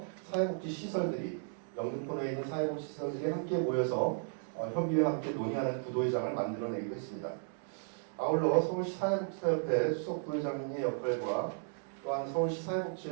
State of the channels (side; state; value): left; silent; digital silence